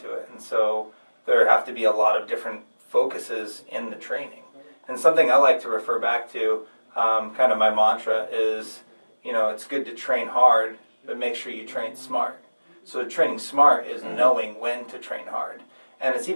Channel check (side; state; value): both; inverted; correlation -1.00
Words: it, and so there have to be a lot of different focuses in the training. And something I like to refer back to, kind of my mantra is, you know, it's good to train hard, but make sure you train smart. So training smart is knowing when to train hard. And it's